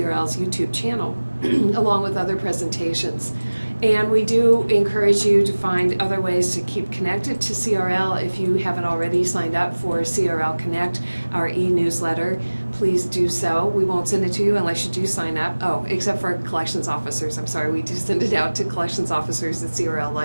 YouTube channel, along with other presentations. And we do encourage you to find other ways to keep connected to CRL. If you haven't already signed up for CRL Connect, our e-newsletter, please do so. We won't send it to you unless you do sign up. Oh, except for collections officers. I'm sorry, we do send it out to collections officers at CRL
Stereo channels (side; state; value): both; inverted; correlation -1.00